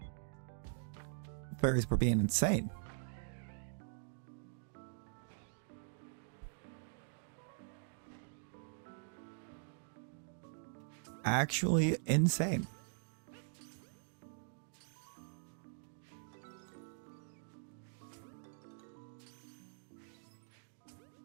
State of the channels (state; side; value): silent; left; digital silence